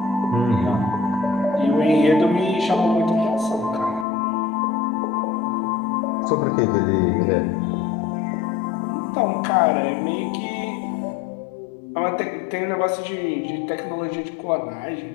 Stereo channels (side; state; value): right; drops out; at 4.0 s